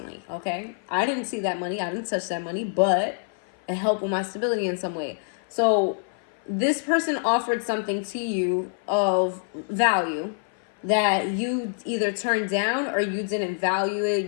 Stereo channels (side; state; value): right; silent; 56 dB below the other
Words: Okay, I didn't see that money. I didn't touch that money, but it helped with my stability in some way. So this person offered something to you of value that you either turned down or you didn't value it,